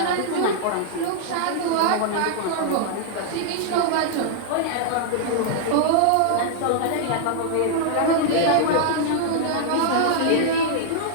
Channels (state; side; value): different; both; correlation -0.01